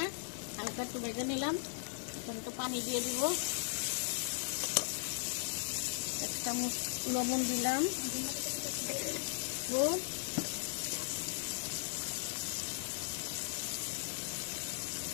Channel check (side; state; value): right; silent; 53 dB below the other